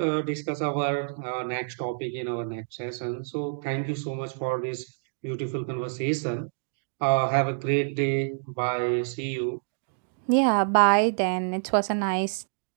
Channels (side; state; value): left; silent; digital silence